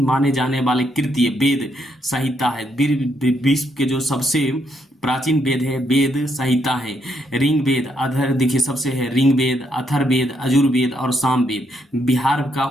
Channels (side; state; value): both; normal; correlation 0.76